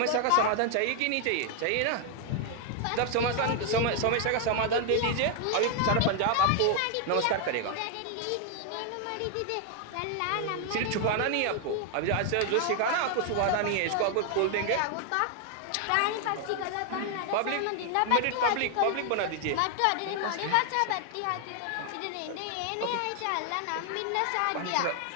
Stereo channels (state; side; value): different; both; correlation 0.00